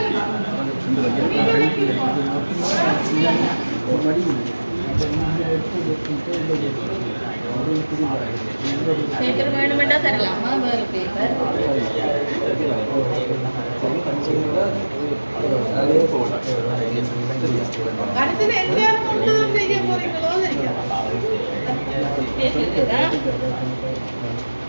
பேப்பர் வேணுமெண்டா தரலாமா? வேறு பேப்பர் அடுத்தது எல்லாரும் ஒன்றுதான் செய்ய போறீங்களோ தெரியாது.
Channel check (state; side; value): inverted; both; correlation -1.00